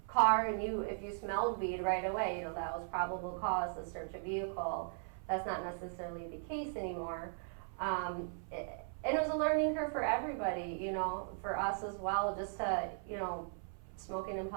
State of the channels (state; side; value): silent; left; 52 dB below the other